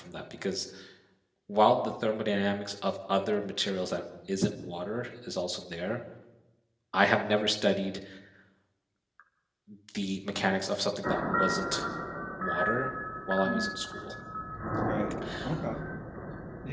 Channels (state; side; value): identical; both; correlation 1.00